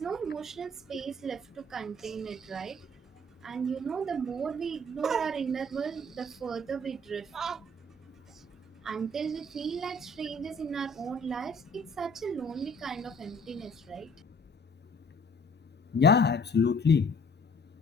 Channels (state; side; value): normal; both; correlation 0.56